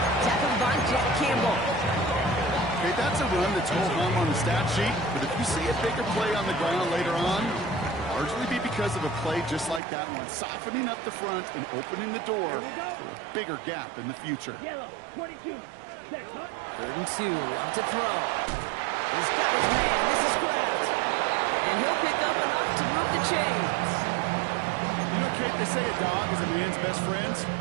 Tackled by Jack Campbell. Okay, that's a run that's ho-hum on the stat sheet, but if you see a bigger play on the ground later on, it'll largely be because of a play just like that one, softening up the front and opening the door for a bigger gap in the future. Yellow, 22. Set, huh? 3rd and 2, love to throw. He's got his man, this is Kraft. And he'll pick up enough to move the chains. You know, Kate, they say a dog is a man's best friend.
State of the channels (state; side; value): drops out; left; at 9.8 s